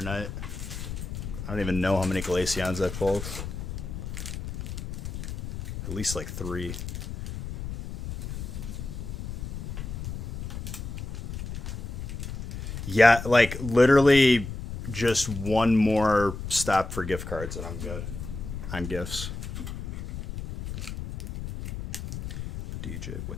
night? I don't even know how many Glaceons I pulled. At least like 3. Yeah, like literally just one more stop for gift cards and I'm good on gifts. DJ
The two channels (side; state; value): left; noise; rumble, 7 dB below the sound